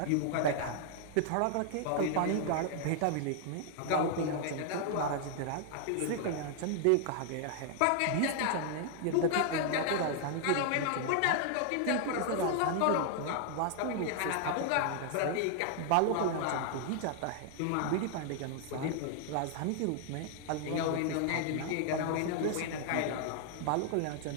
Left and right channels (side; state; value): both; different; correlation 0.00